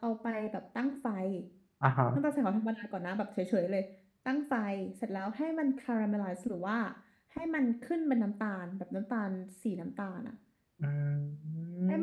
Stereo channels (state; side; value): identical; both; correlation 1.00